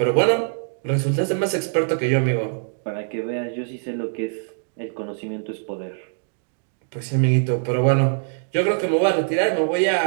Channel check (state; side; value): silent; left; digital silence